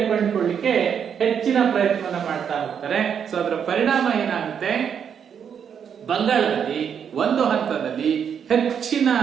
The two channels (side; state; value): left; quieter; 7.7 dB